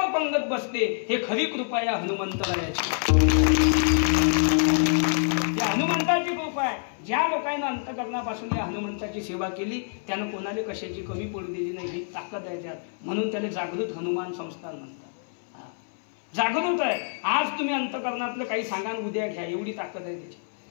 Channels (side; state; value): right; silent; 60 dB below the other